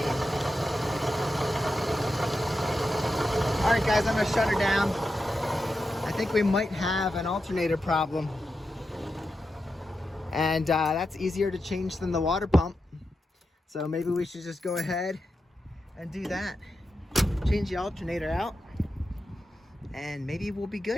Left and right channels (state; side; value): normal; both; correlation 0.89